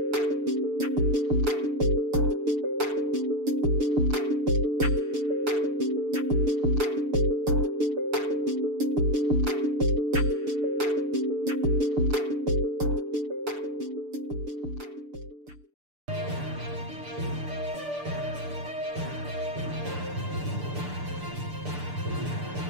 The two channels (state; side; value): late; left; 6.8 ms